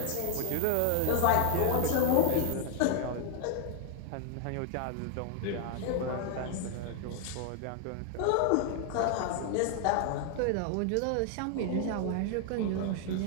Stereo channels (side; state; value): both; different; correlation 0.00